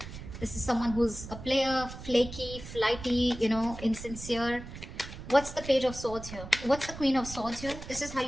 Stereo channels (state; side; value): noise; right; rumble, 12 dB below the sound